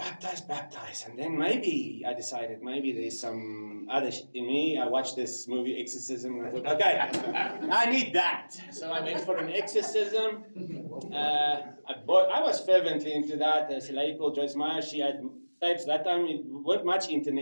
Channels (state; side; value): inverted; both; correlation -1.00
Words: baptize. And then maybe I decided, maybe there's some other in me. I watched this movie, Exorcism, and I thought, okay, I need that. So I went for an exorcism. I was fervently into that. There's a lady called Joyce Meyer. She had tapes. That time, it wasn't much